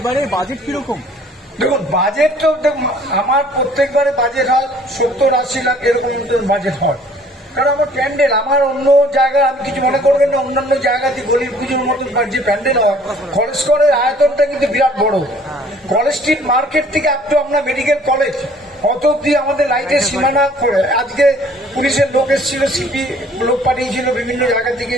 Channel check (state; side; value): normal; both; correlation 0.56